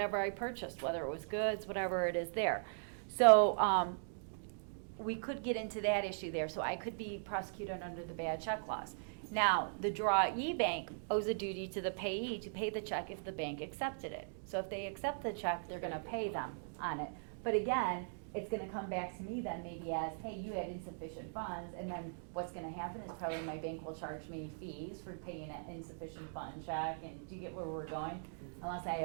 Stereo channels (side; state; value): left; silent; digital silence